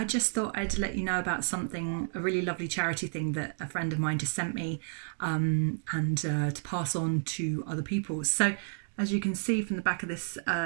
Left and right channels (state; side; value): silent; left; digital silence